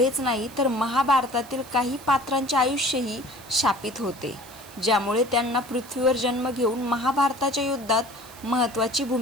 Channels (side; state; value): right; noise; hiss, 20 dB below the sound